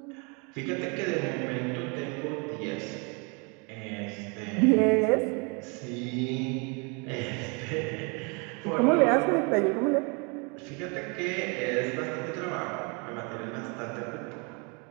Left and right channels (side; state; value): left; quieter; 32.7 dB